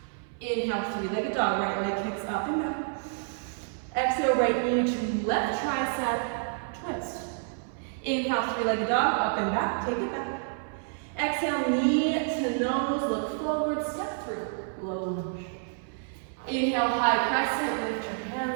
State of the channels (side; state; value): left; silent; 59 dB below the other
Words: Inhale, three-legged dog, right leg kicks up and back. Exhale, right knee to left tricep, twist. Inhale, three-legged dog, up and back, take it back. Exhale, knee to nose, look forward, step through, low lunge. Inhale, high crescent, lift your